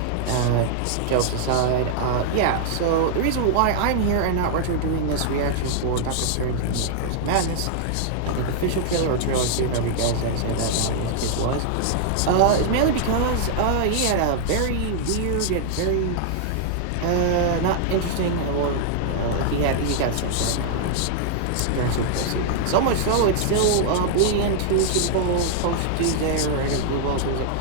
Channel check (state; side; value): different; both; correlation -0.01